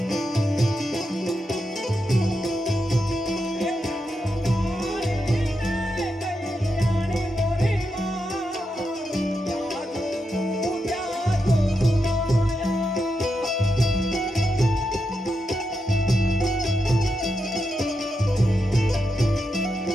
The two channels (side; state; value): both; normal; correlation 0.86